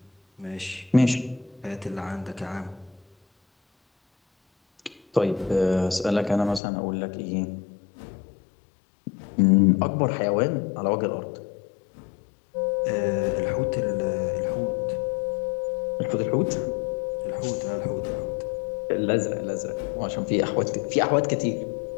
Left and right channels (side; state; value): right; drops out; at 6.6 s